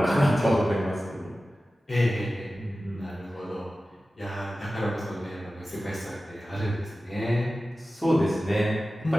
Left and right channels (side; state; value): both; normal; correlation 0.95